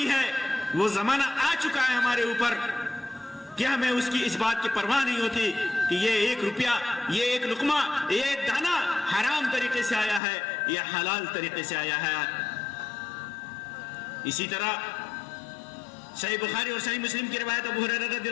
ہے. وہ زمانہ آ چکا ہے ہمارے اوپر کہ ہمیں اس کی اس بات کی پرواہ نہیں ہوتی کہ یہ 1 روپیہ، یہ 1 لقمہ، یہ 1 دانہ حرام طریقے سے آیا ہے یا حلال طریقے سے آیا ہے. اسی طرح صحیح بخاری اور صحیح مسلم کی روایت ابو ہریرہ رضی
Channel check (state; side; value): drops out; right; at 10.2 s